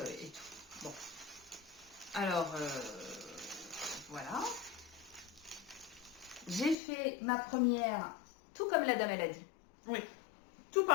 et tout. Bon. Alors, voilà. J'ai fait ma première, tout comme la dame, elle a dit. Oui. Tout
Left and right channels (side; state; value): right; drops out; at 6.8 s